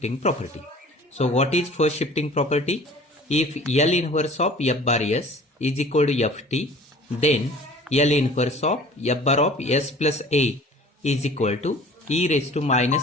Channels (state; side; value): normal; both; correlation 0.46